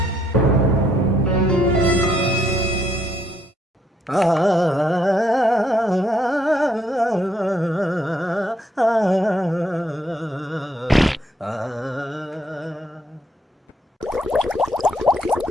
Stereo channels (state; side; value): normal; both; correlation 0.71